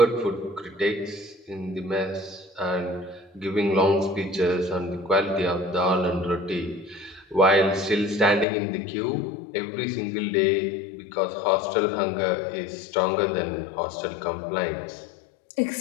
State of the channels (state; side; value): drops out; right; at 8.5 s